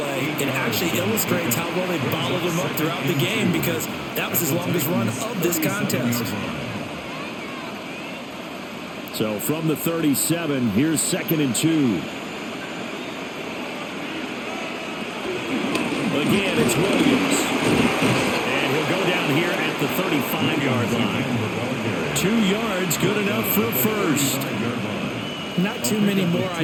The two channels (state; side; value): identical; both; correlation 1.00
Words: it actually illustrates how well they bottled them up throughout the game, because that was his longest run of this contest. So from the 37, here's 2nd and 2. Again, it's Williams. And he'll go down here at the 35-yard line. 2 yards, good enough for a first. Not too many more